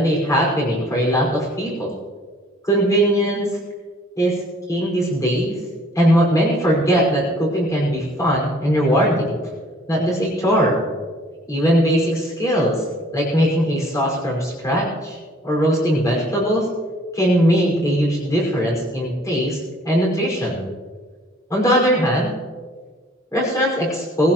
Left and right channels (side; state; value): both; normal; correlation 0.57